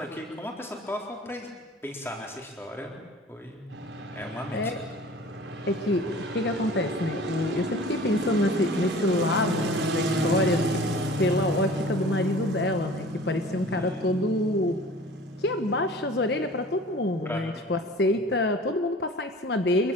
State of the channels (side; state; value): both; normal; correlation 0.44